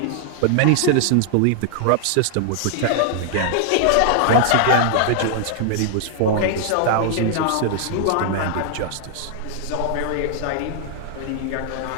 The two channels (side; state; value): both; different; correlation -0.01